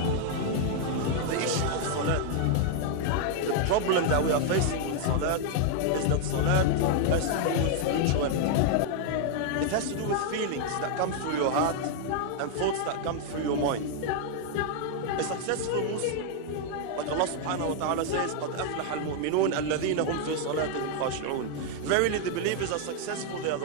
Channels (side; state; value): both; different; correlation 0.00